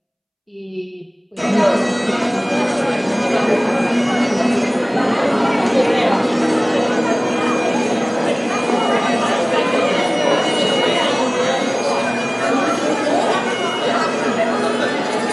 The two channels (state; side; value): identical; both; correlation 1.00